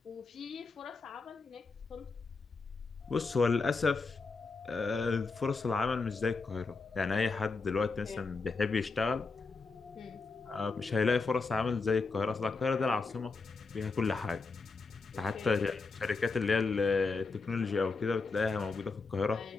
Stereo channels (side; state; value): right; quieter; 4.2 dB